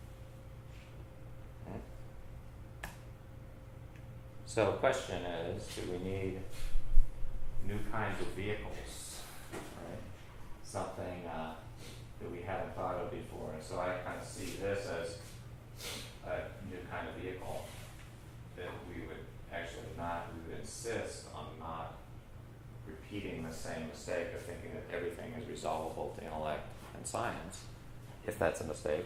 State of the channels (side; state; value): both; identical; correlation 1.00